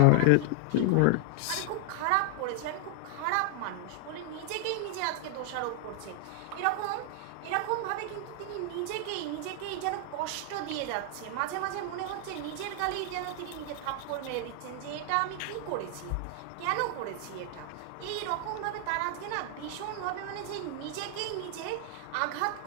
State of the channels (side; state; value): both; different; correlation 0.00